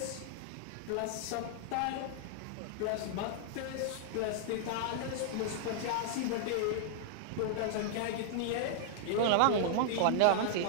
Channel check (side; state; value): both; different; correlation -0.01